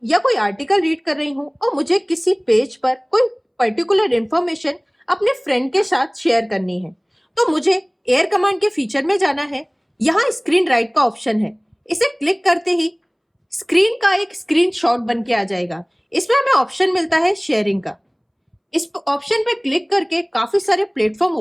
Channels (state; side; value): identical; both; correlation 1.00